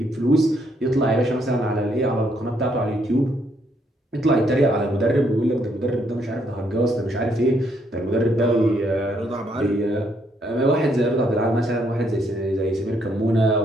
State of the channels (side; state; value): both; normal; correlation 0.72